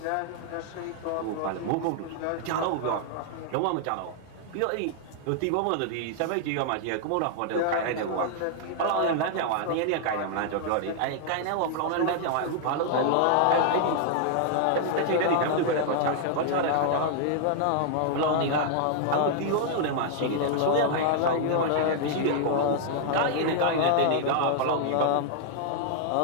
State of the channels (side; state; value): both; different; correlation -0.01